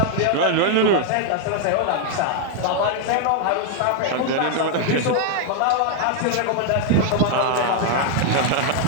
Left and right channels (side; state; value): both; different; correlation 0.00